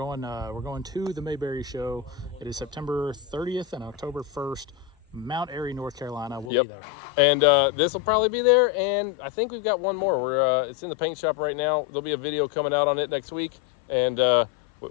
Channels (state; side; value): drops out; right; at 6.5 s